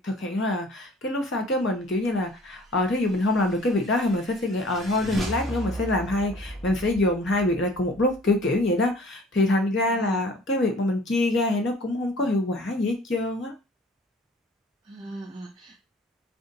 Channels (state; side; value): normal; both; correlation 0.50